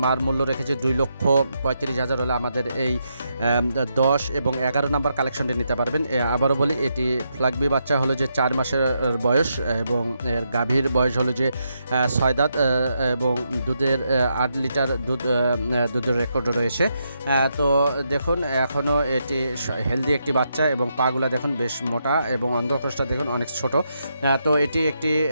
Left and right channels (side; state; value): both; inverted; correlation -0.81